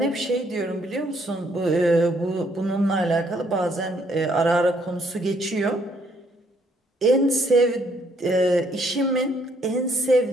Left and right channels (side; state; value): both; normal; correlation 0.68